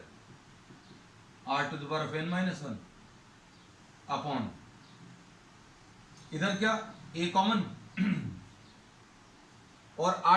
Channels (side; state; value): both; identical; correlation 1.00